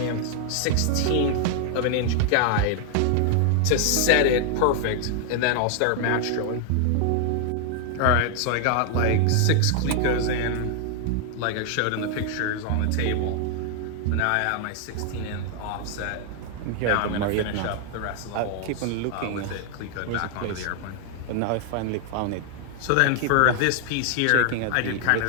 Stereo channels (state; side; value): different; both; correlation 0.00